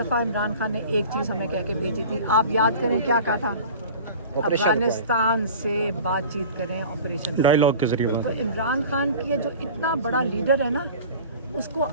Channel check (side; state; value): both; inverted; correlation -0.40